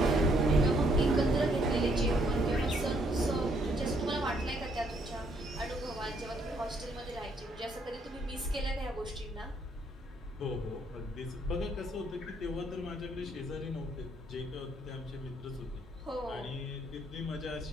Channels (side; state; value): both; normal; correlation 0.69